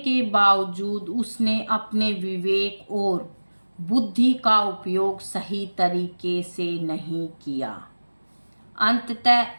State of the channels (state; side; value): inverted; both; correlation -1.00